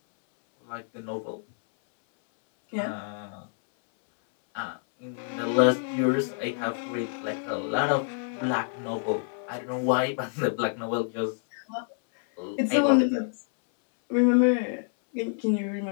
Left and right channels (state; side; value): silent; right; 60 dB below the other